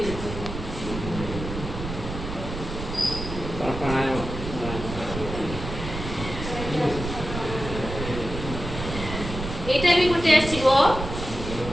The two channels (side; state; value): right; noise; rumble, 7 dB below the sound